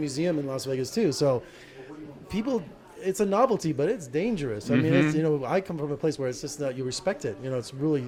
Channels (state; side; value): identical; both; correlation 1.00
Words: in Las Vegas too. So people, it's a novelty, but it's dangerous. I mean, it's, I come from a place where it's just that you respect it. It's